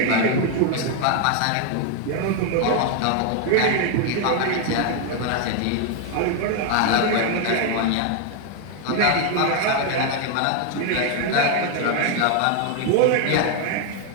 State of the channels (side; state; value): both; different; correlation 0.01